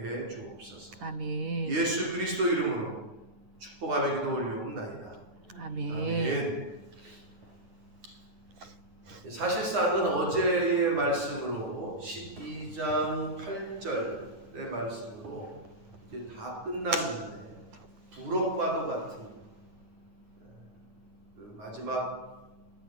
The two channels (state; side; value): late; left; 9.7 ms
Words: 해 주옵소서. 아멘. 예수 그리스도 이름으로 축복하며 기도 올리옵나이다. 아멘. 아멘. 사실상은 어제의 말씀으로 12장 8절의 말씀으로 이제 다 끝났는데 부록과도 같은 그 마지막